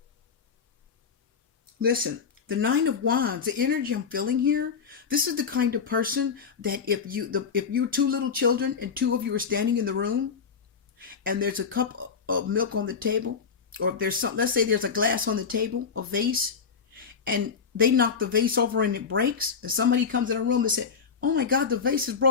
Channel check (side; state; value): right; quieter; 6.0 dB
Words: Listen, the Nine of Wands, the energy I'm feeling here, this is the kind of person that if you're two little children and two of you are standing in the room and there's a cup of milk on the table, or if there's let's say there's a glass on the table, a vase, and they knock the vase over and it breaks, and somebody comes in the room and says, oh my God, the vase is